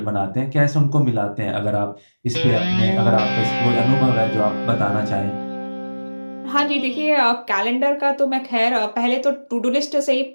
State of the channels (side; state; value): both; inverted; correlation -1.00